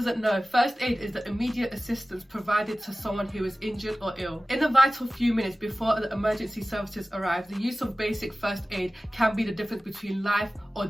know, first aid is the immediate assistance provided to someone who is injured or ill. In the vital few minutes before the emergency services arrive, the use of basic first aid can be the difference between life or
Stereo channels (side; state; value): both; normal; correlation 0.96